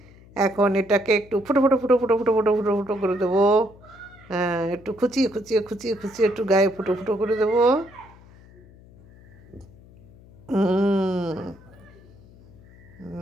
এখন এটাকে একটু ফুটো ফুটো ফুটো ফুটো ফুটো ফুটো ফুটো ফুটো করে দেবো। হ্যাঁ, একটু খুচিয়ে খুচিয়ে খুচিয়ে খুচিয়ে একটু গায়ে ফুটো ফুটো করে দেবো।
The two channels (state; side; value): noise; left; hum, 24 dB below the sound